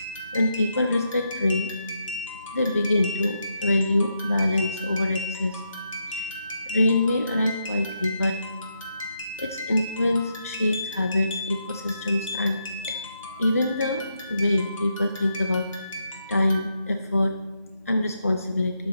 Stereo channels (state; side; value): inverted; both; correlation -0.81